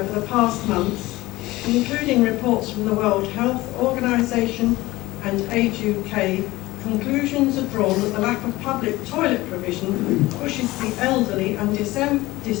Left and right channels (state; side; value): quieter; right; 18.9 dB